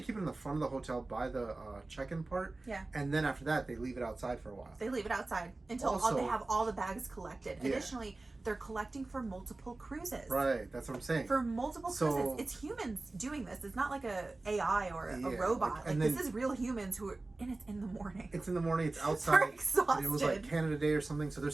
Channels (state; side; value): quieter; left; 3.1 dB